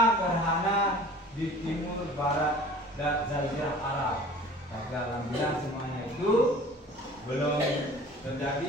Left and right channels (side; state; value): both; normal; correlation 0.45